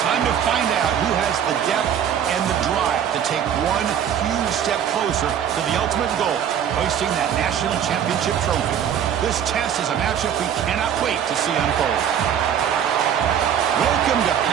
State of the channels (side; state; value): left; quieter; 9.0 dB